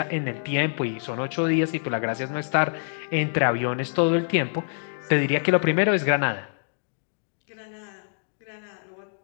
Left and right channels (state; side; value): silent; right; digital silence